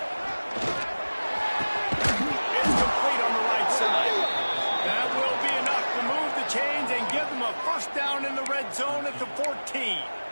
It's complete on the right side. That will be enough to move the chains and give them a first down in the red zone at the 14.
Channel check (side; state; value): both; inverted; correlation -1.00